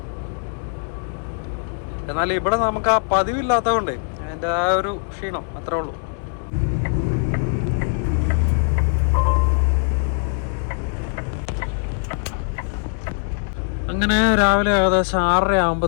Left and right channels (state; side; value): silent; right; digital silence